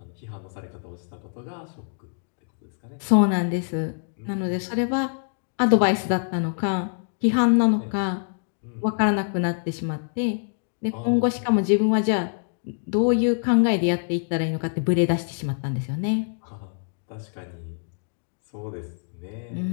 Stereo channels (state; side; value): silent; right; digital silence